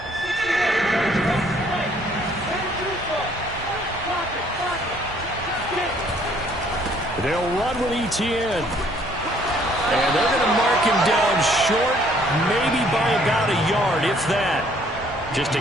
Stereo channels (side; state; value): both; normal; correlation 0.62